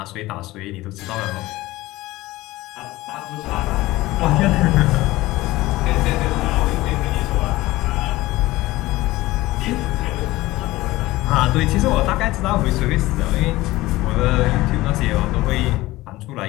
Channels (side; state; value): right; quieter; 18.4 dB